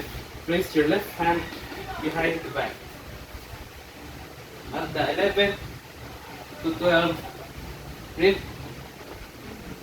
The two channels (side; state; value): both; identical; correlation 1.00